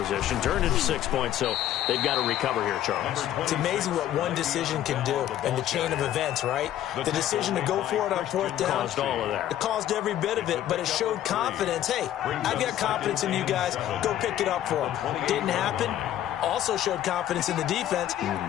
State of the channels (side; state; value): right; quieter; 12.2 dB